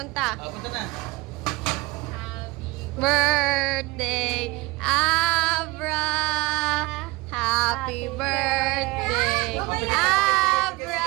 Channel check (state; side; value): quieter; left; 22.6 dB